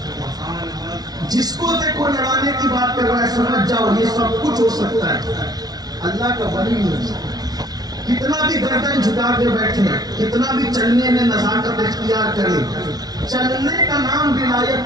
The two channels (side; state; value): left; late; 0.19 ms